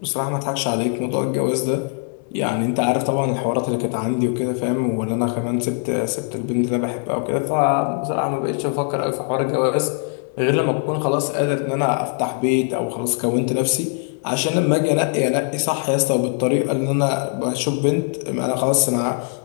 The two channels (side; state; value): right; silent; 57 dB below the other